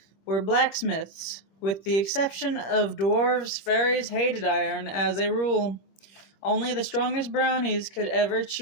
were blacksmiths. With the exception of dwarves, fairies hated iron as a rule. Only the strongest brownies could ever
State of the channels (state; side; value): late; right; 25 ms